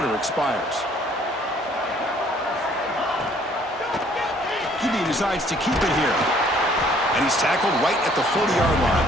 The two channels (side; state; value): both; normal; correlation 0.60